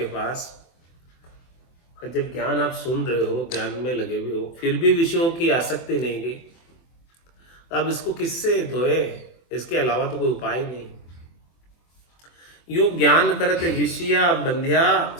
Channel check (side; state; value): right; late; 24 ms